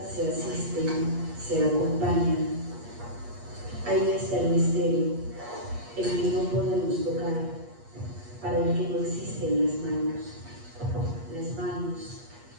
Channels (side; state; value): left; late; 8.4 ms